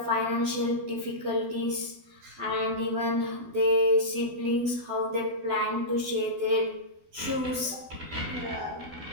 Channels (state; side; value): late; left; 12 ms